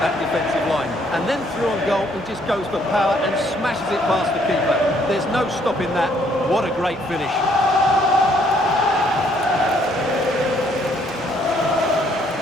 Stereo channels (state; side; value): normal; both; correlation 0.66